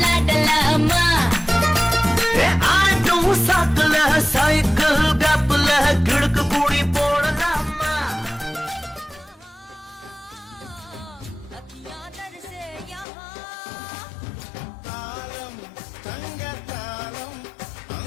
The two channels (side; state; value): right; drops out; at 13.1 s